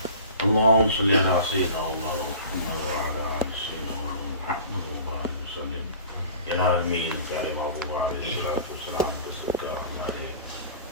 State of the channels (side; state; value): both; inverted; correlation -0.42